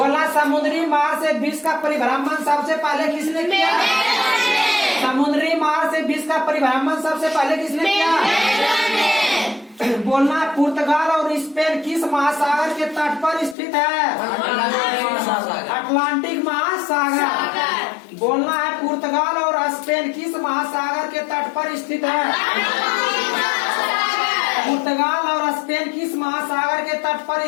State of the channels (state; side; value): drops out; right; at 13.6 s